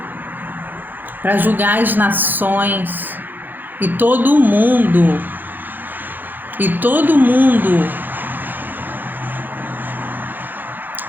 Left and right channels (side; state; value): left; late; 0.088 ms